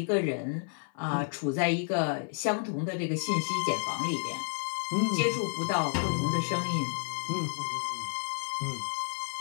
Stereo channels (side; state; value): right; silent; 55 dB below the other